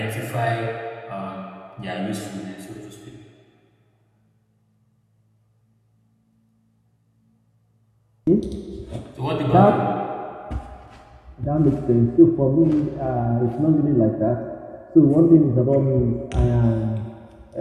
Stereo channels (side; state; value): both; identical; correlation 1.00